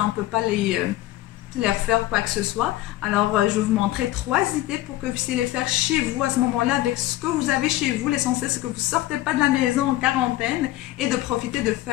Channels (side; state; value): right; quieter; 15.8 dB